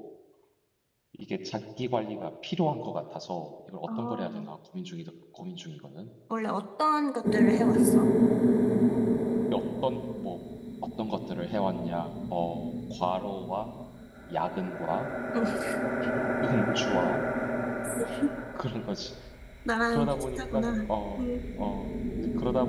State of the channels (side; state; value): both; identical; correlation 1.00